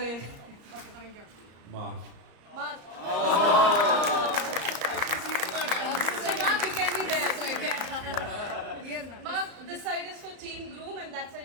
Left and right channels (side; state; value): left; late; 34 ms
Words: Mark, you can be there. Mark, this side is for team groom and that